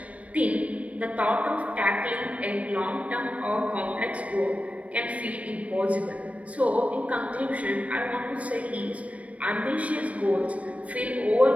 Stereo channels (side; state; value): left; late; 0.065 ms